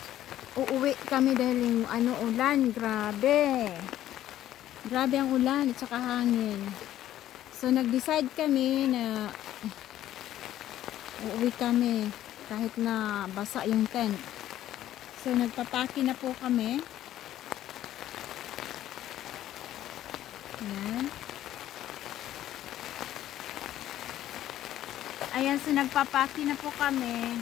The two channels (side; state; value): right; quieter; 12.7 dB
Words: uuwi kami dahil yung ulan, grabe ang ulan at saka hangin. So nag-decide kami na uuwi kami kahit na basa yung tent. So nagpapaki na po kami. Ayan. Ayan, so nagpapaki na po kami.